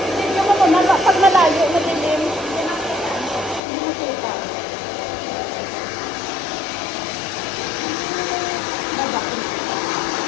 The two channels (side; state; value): right; drops out; at 3.6 s